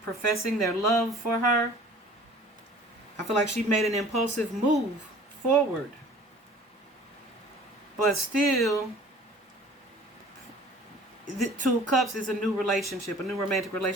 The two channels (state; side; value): normal; both; correlation 0.48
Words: professing their love for her. I feel like she made an impulsive move forward. But still, the Two of Cups is a new relationship, a new romantic